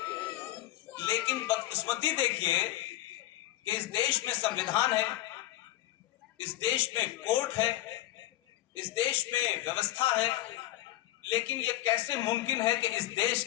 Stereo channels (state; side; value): quieter; right; 15.3 dB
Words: लेकिन बदकिस्मती देखिए कि इस देश में संविधान है, इस देश में कोर्ट है, इस देश में व्यवस्था है, लेकिन ये कैसे मुमकिन है कि इस देश